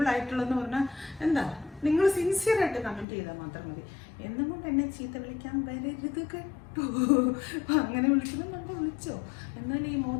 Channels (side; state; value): right; drops out; at 3.1 s